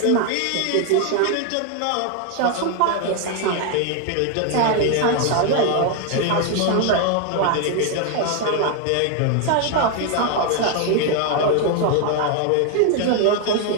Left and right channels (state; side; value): different; both; correlation 0.01